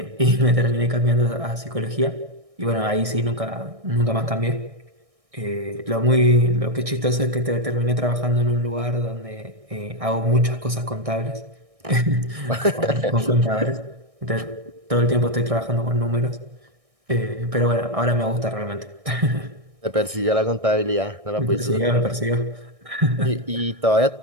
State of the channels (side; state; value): left; late; 1.6 ms